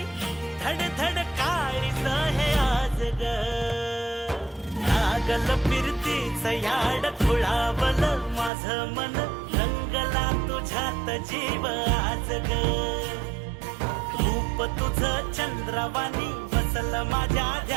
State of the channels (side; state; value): left; drops out; at 8.5 s